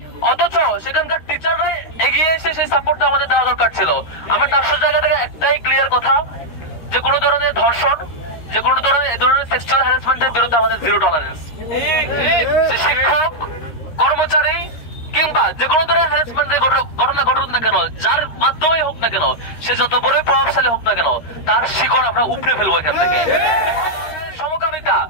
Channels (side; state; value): right; late; 13 ms